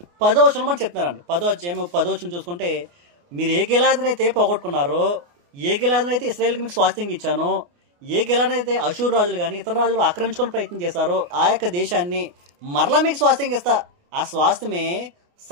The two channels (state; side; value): late; left; 29 ms